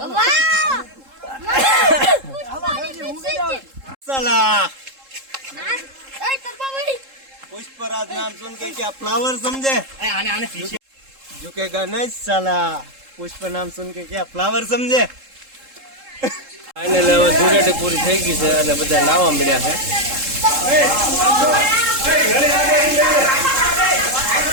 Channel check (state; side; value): late; left; 3.7 ms